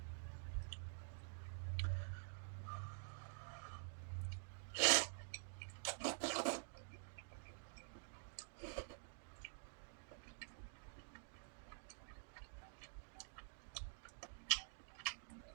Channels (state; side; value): silent; left; digital silence